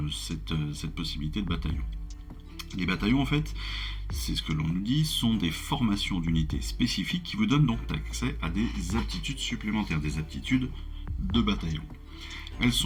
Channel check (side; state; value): both; identical; correlation 1.00